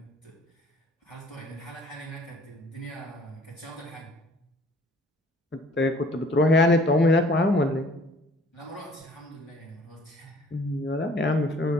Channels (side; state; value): both; normal; correlation 0.55